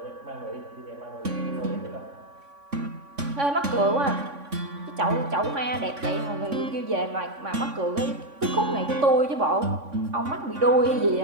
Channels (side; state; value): left; late; 3.5 ms